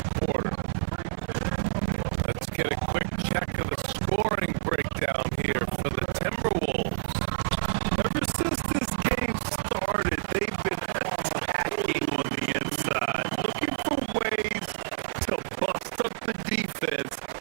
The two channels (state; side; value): silent; left; 59 dB below the other